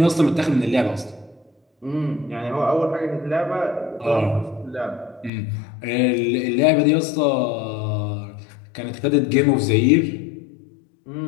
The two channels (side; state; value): right; drops out; at 5.3 s